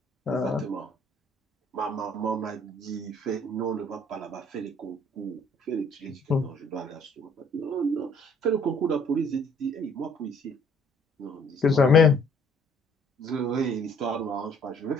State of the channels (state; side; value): normal; both; correlation 0.60